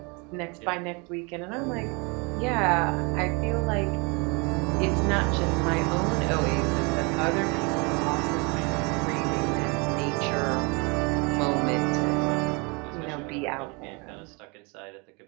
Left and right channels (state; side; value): quieter; left; 30.5 dB